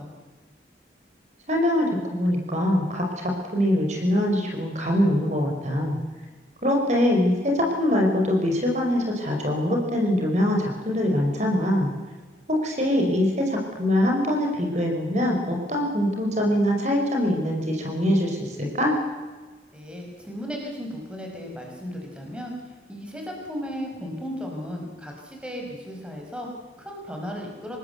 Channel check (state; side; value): normal; both; correlation 0.70